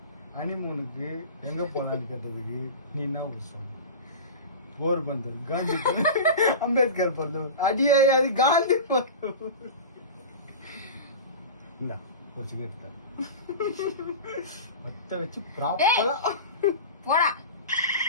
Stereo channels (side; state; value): both; inverted; correlation -0.30